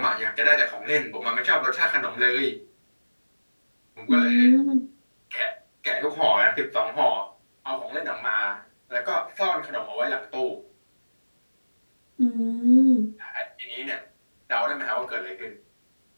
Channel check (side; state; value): both; inverted; correlation -1.00